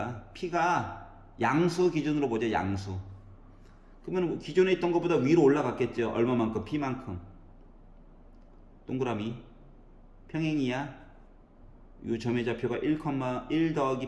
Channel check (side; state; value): both; identical; correlation 1.00